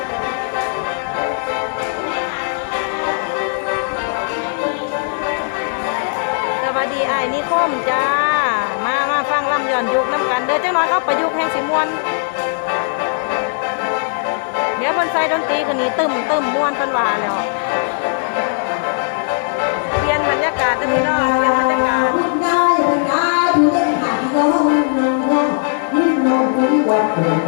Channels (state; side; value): silent; right; digital silence